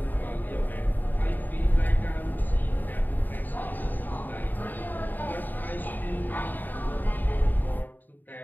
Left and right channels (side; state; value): right; late; 0.088 ms